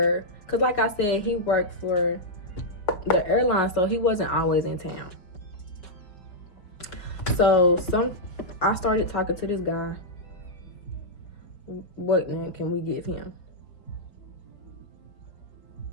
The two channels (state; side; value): late; right; 5.1 ms